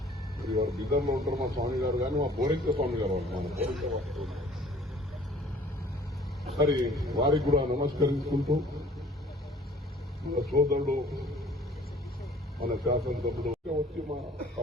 మరి వారు బిద్దర్లో ఉంటారు మా స్వామి గారు కానీ మా బోరింగ స్వామి గారు మన బోరింగ వారు మరి వారికి కూడా నమస్కరించుకుంటూ మన సోదరుడు మన శాసనసభ్యుడు వచ్చి మా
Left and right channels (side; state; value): both; normal; correlation 0.53